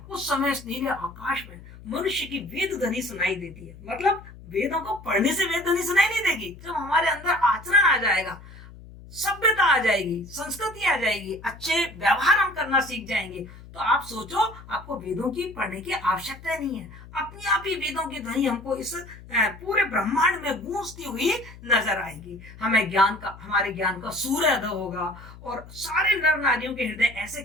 उस समय इस नीले आकाश में मनुष्य की वेद ध्वनि सुनाई देती है। मतलब वेदों को पढ़ने से वेद ध्वनि सुनाई नहीं देगी। जब हमारे अंदर आचरण आ जाएगा, सभ्यता आ जाएगी, संस्कृति आ जाएगी, अच्छे व्यवहार हम करना सीख जाएंगे, तो आप सोचो आपको वेदों की पढ़ने की आवश्यकता नहीं है। अपने आप ही वेदों की ध्वनि हमको इस पूरे ब्रह्मांड में गूंजती हुई नजर आएगी। हमारे ज्ञान का सूर्योदय होगा और सारे नर नारियों के हृदय ऐसे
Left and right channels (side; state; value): left; noise; hum, 18 dB below the sound